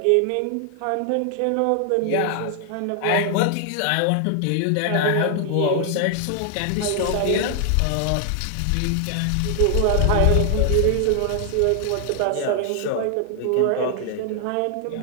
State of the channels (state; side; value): different; both; correlation 0.00